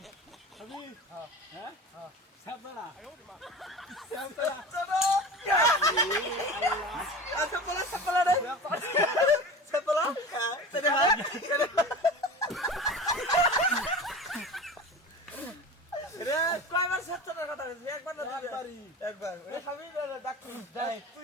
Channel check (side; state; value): both; normal; correlation 0.33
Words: খাবি হ্যাঁ সাবরা সাবরা আচ্ছা বলা সাবরা রে সাবরা তেরে ভাই রে কয়বার সাতটার কথা বলছিস একবার না দুইবারই একবার ওই খাবি না ডাক্তার যাই